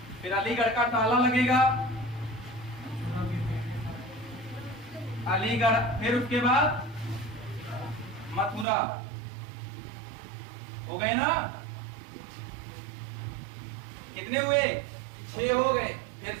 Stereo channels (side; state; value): left; drops out; at 8.7 s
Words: फिर अलीगढ़ का ताला लगेगा, अलीगढ़, फिर उसके बाद मथुरा, हो गए ना, कितने हुए, 6 हो गए। फिर